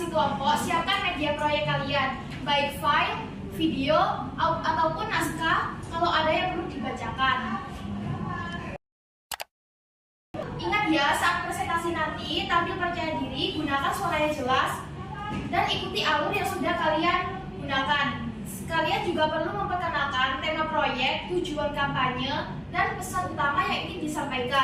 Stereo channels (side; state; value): both; identical; correlation 1.00